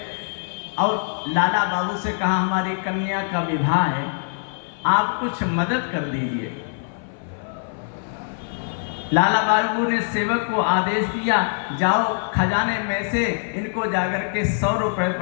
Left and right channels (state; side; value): silent; right; 57 dB below the other